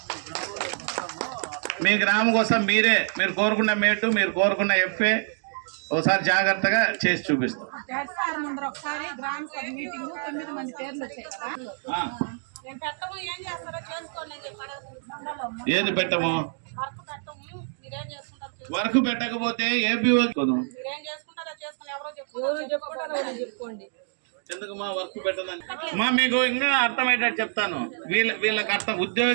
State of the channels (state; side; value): silent; left; digital silence